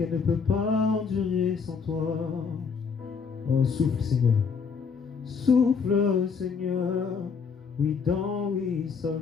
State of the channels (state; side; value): quieter; right; 5.7 dB